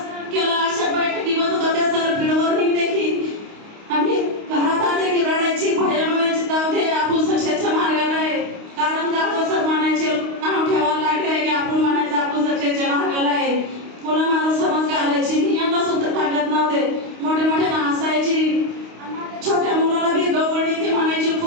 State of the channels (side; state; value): left; late; 29 ms